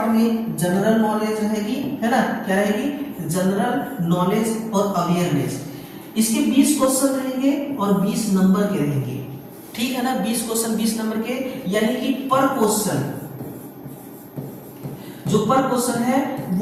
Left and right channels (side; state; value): both; identical; correlation 1.00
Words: में जनरल नॉलेज रहेगी, है ना, क्या रहेगी, जनरल नॉलेज और अवेयरनेस। इसके 20 क्वेश्चन रहेंगे और 20 नंबर के रहेंगे, ठीक है ना, 20 क्वेश्चन 20 नंबर के, यानी कि पर क्वेश्चन, जो पर क्वेश्चन है